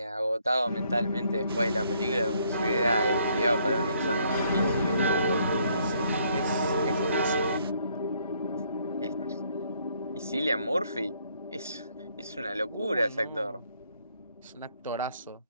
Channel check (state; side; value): inverted; both; correlation -0.68